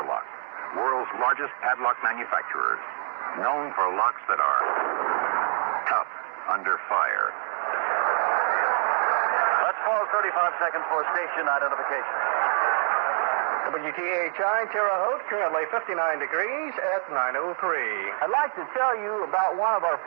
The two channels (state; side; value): silent; left; 61 dB below the other